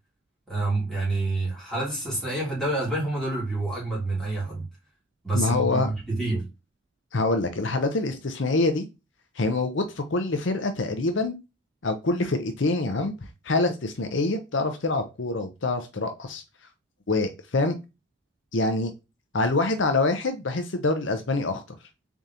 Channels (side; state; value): both; normal; correlation 0.24